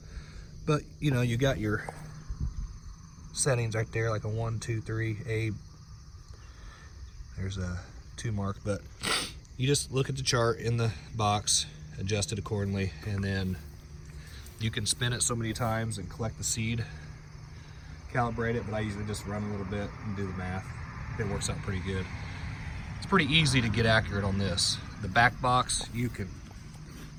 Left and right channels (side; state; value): both; identical; correlation 1.00